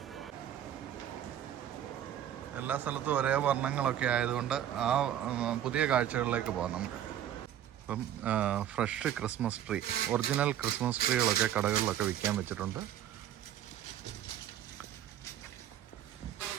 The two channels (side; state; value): left; quieter; 10.9 dB